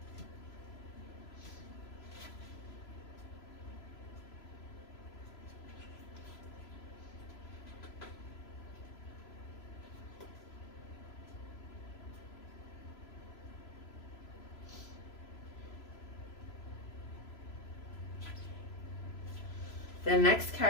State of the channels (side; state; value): right; late; 3.0 ms